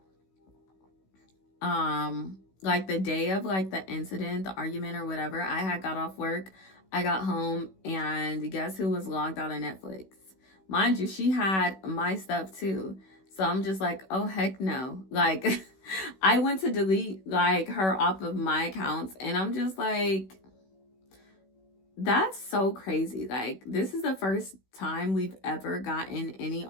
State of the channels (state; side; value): late; right; 16 ms